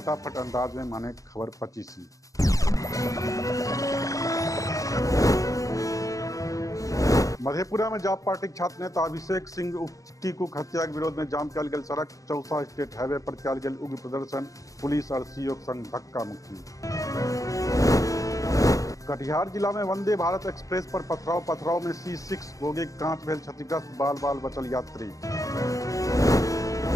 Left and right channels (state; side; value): late; right; 0.16 ms